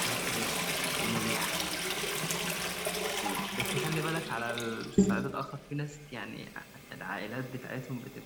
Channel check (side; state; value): both; identical; correlation 1.00